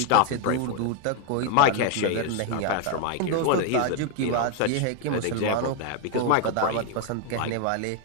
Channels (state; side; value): different; both; correlation 0.01